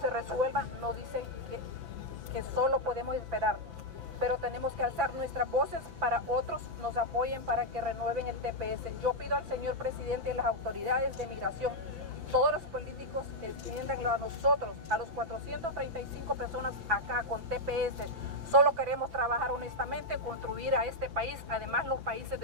resuelva, nos dicen que solo podemos esperar. Pero tenemos que alzar nuestras voces para otros nos apoyen para que renueven el TPS. Yo pido al señor presidente y las autoridades de migración, todos los políticos, extiéndanlo a nosotros, a los 435 personas acá con TPS. Solo queremos trabajar honestamente, contribuir a este país. Además, los países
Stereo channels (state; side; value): late; left; 5.9 ms